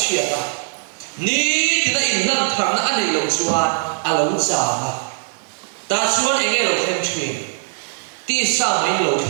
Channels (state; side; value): silent; left; digital silence